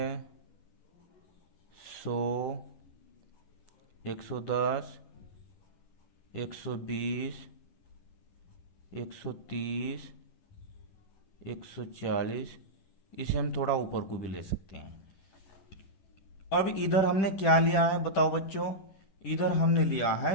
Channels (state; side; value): late; right; 10 ms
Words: 100, 110, 120, 130, 140, इसे हम थोड़ा ऊपर को भी ले सकते हैं। अब इधर हमने क्या लिया है बताओ बच्चों? इधर हमने लिया